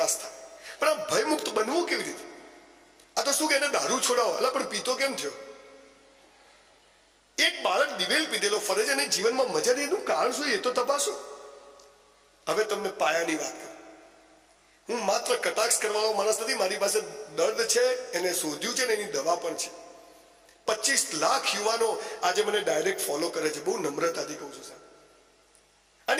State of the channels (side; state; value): both; identical; correlation 1.00